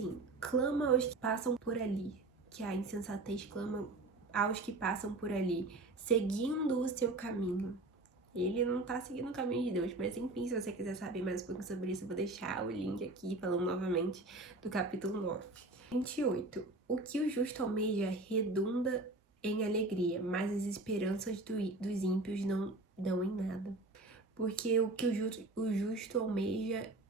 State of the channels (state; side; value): quieter; left; 3.0 dB